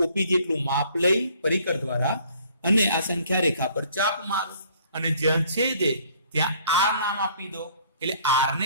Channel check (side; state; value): both; inverted; correlation -0.58